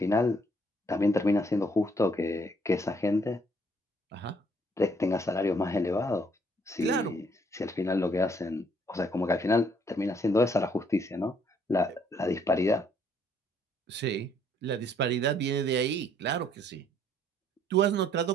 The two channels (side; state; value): both; normal; correlation 0.65